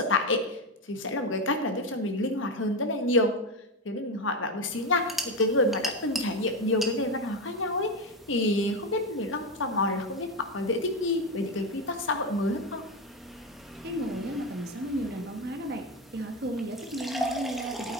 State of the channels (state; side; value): normal; both; correlation 0.14